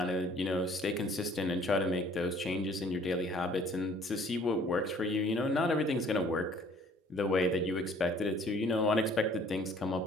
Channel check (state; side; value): normal; both; correlation 0.56